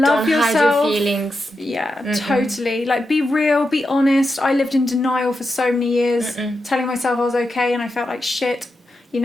hide your feelings. Yeah, totally. Like, be real, be honest. I lived in denial for so many years, telling myself I was okay, and I felt like shit, you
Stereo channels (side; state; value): both; normal; correlation 0.88